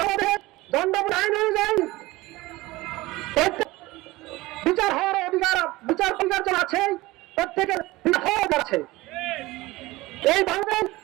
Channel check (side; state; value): left; quieter; 19.9 dB